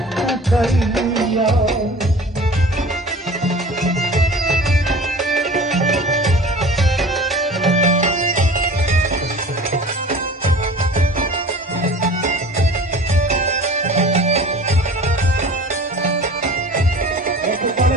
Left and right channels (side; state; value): both; normal; correlation 0.42